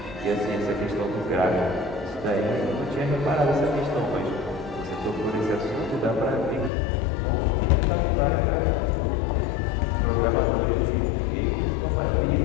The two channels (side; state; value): right; drops out; at 6.7 s